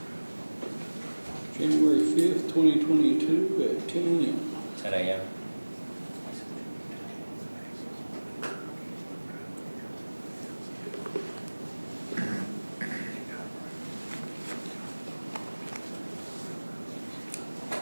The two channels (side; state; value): both; inverted; correlation -1.00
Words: January 5th, 2022 at 10 a.m. 10 a.m.